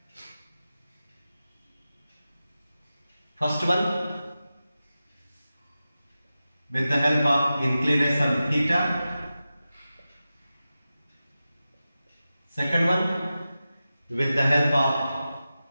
First one, with the help of inclination theta. Second one, with the help of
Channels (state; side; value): inverted; both; correlation -0.94